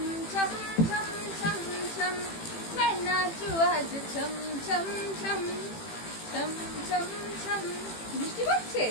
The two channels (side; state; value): right; late; 18 ms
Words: छम छम छम छम मैं नाचूं आज छम छम छम छम छम छम। বৃষ্টি পড়ছে,